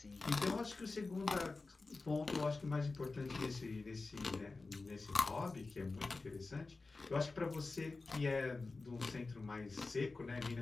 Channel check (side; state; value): right; quieter; 3.7 dB